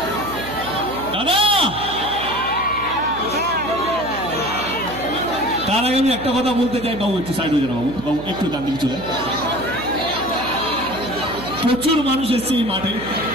দাদা তার আগে আমি একটা কথা বলতে চাই, বাবু একটু সাইড হয়ে যান, বাবু বাবু একটু ডান দিকে চলে। প্রচুর মানুষ এসছে এই মাঠে,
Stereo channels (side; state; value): right; noise; hum, 12 dB below the sound